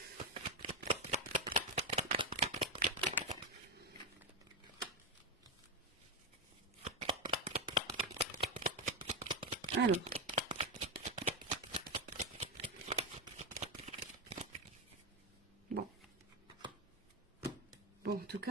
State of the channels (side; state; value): both; normal; correlation 0.09